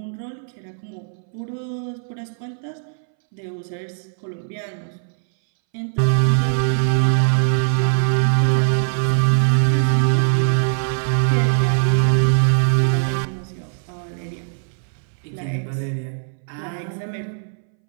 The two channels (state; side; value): silent; left; 63 dB below the other